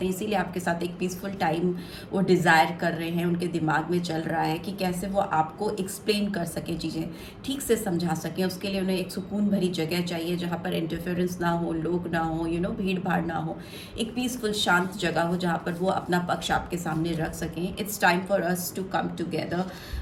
हैं, इसीलिए आपके साथ एक पीसफुल टाइम वो डिज़ायर कर रहे हैं। उनके दिमाग में चल रहा है कि कैसे वो आपको एक्सप्लेन कर सकें, चीज़ें ठीक से समझा सकें। उसके लिए उन्हें एक सुकून भरी जगह चाहिए जहाँ पर इंटरफेरेंस ना हो, लोग ना हो, भीड़ भाड़ ना हो, एक पीसफुल शांत जगह हो जहाँ पर वो अपना पक्ष आपके सामने रख सकें। It's time for us to come together.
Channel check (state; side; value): identical; both; correlation 1.00